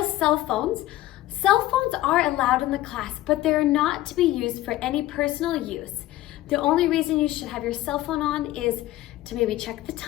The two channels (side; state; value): right; quieter; 15.7 dB